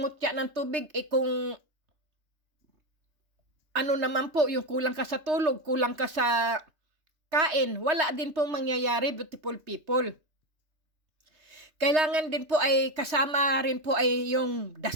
mutya ng tubig, kung ano naman po, yung kulang ka sa tulog, kulang ka sa kain, wala din pong mangyayari, beautiful people. Kailangan din po ay kasama rin po ay yung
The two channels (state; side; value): late; left; 3.2 ms